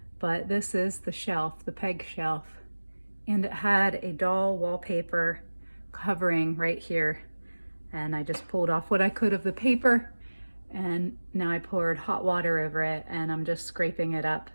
But this is the shelf, the peg shelf, and it had a doll wallpaper covering right here. And I just pulled off what I could of the paper, and now I poured hot water over it, and I'm just scraping it up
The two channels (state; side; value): inverted; both; correlation -1.00